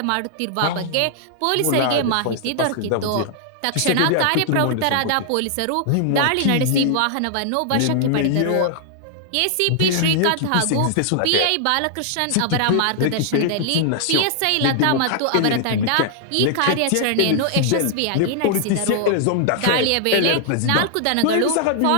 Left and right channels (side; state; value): both; different; correlation -0.01